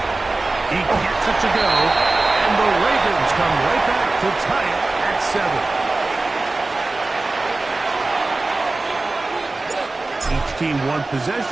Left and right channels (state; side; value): quieter; left; 3.2 dB